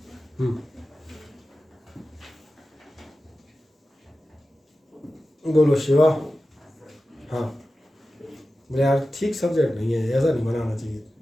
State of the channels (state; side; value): normal; both; correlation 0.94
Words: बोलो शिवा। हाँ बोले यार ठीक सब्जेक्ट नहीं है, ऐसा नहीं बनाना चाहिए,